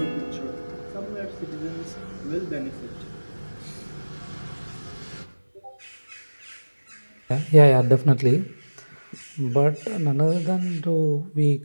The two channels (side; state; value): both; inverted; correlation -1.00